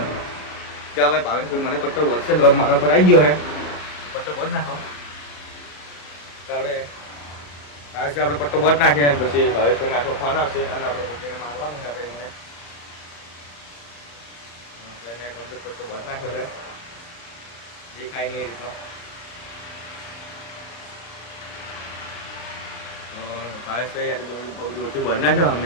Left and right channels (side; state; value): right; late; 35 ms